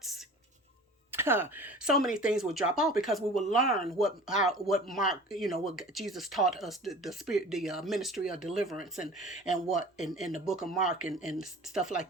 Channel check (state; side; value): normal; both; correlation 0.42